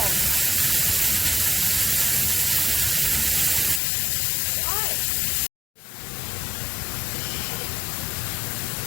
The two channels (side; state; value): right; drops out; at 3.8 s